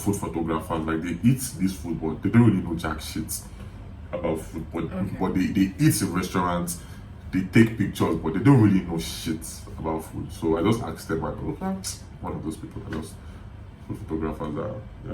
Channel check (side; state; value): both; identical; correlation 1.00